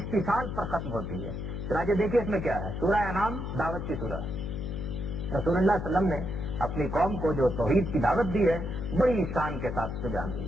پر ختم ہوتی ہے. چنانچہ دیکھیے اس میں کیا ہے. سورہ انعام دعوت کی سورہ. رسول اللہ صلی اللہ علیہ وسلم نے اپنی قوم کو جو توحید کی دعوت دی ہے بڑی شان کے ساتھ سے بیان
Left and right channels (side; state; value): left; noise; hum, 5 dB below the sound